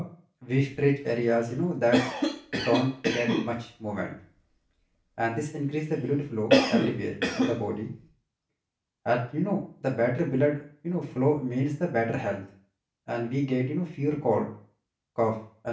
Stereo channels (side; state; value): both; identical; correlation 1.00